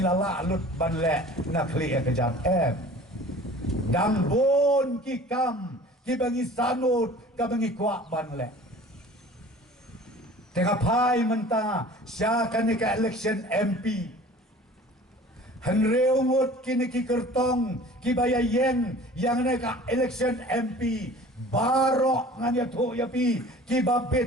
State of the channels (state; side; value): normal; both; correlation 0.44